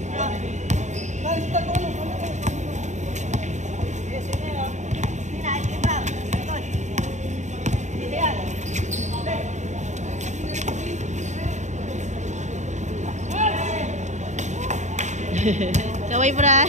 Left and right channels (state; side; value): late; left; 0.34 ms